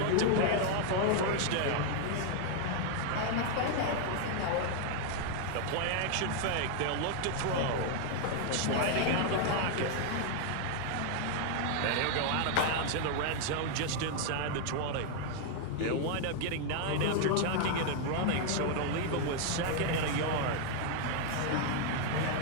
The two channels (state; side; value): different; both; correlation 0.00